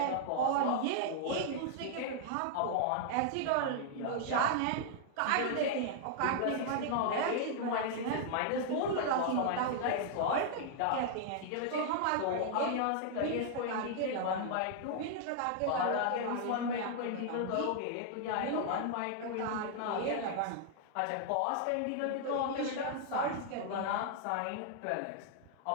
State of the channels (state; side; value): different; both; correlation -0.01